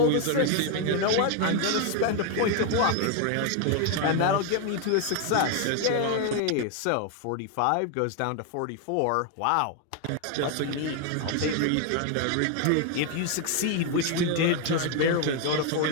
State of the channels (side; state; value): both; different; correlation 0.01